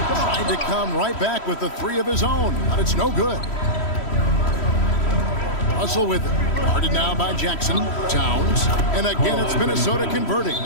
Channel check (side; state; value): right; late; 3.1 ms